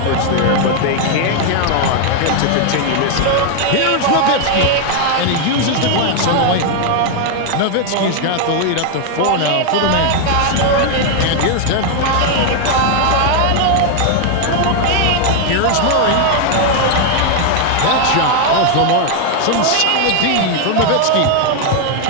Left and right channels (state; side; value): different; both; correlation 0.00